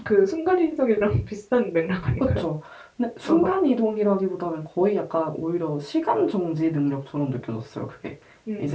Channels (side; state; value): both; identical; correlation 1.00